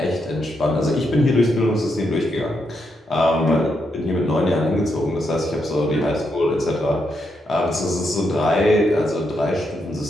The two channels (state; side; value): normal; both; correlation 0.81